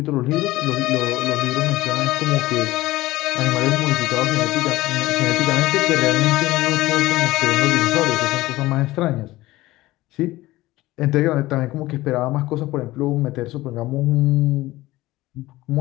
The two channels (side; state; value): right; quieter; 17.9 dB